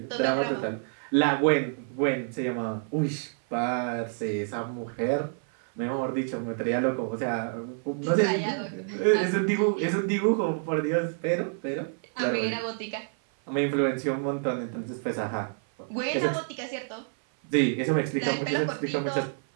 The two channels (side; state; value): left; silent; 56 dB below the other